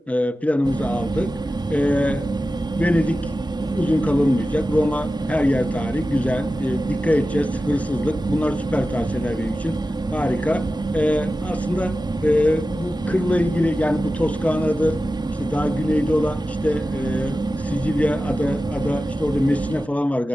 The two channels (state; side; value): normal; both; correlation 0.94